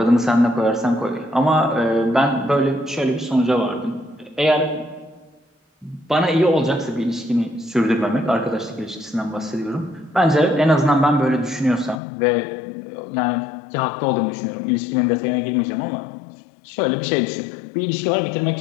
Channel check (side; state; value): right; drops out; at 12.0 s